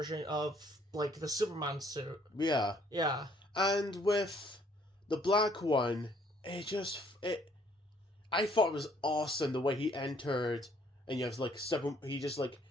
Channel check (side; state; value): both; normal; correlation 0.63